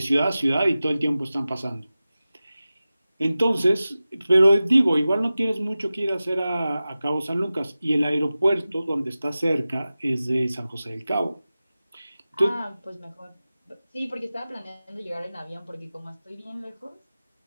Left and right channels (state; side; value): inverted; both; correlation -0.95